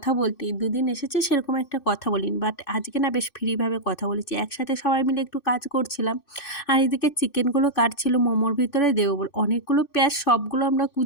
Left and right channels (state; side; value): late; right; 2.6 ms